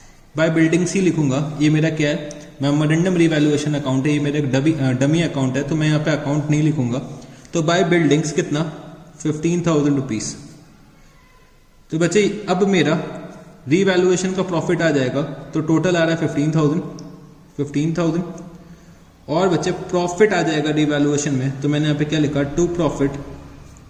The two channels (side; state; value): both; identical; correlation 1.00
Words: By buildings ही लिखूंगा। ये मेरा क्या है, मेमोरेंडम रिवैल्यूएशन अकाउंट है, ये मेरा एक डमी अकाउंट है, तो मैं यहाँ पे अकाउंट नहीं लिखूंगा। तो बाय बिल्डिंग्स कितना, 15,000 रुपीज। तो बच्चे अब मेरा रिवैल्यूएशन का प्रॉफिट आ जाएगा, तो टोटल आ रहा है 15,000। और बच्चे प्रॉफिट आ जाएगा रिवैल्यूएशन में, तो मैंने यहाँ पे क्या लिखा, टू प्रॉफिट